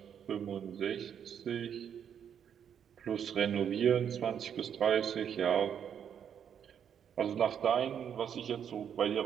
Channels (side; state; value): left; quieter; 8.4 dB